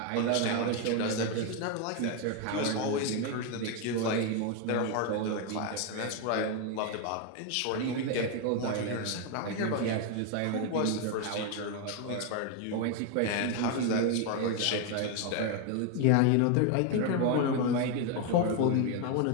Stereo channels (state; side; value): different; both; correlation 0.01